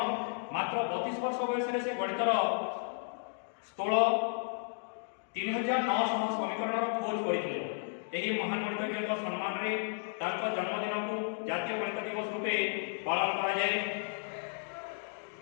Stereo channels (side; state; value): right; silent; digital silence